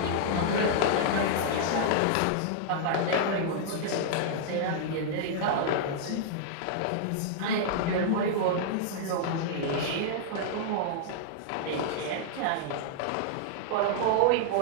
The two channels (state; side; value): different; both; correlation -0.01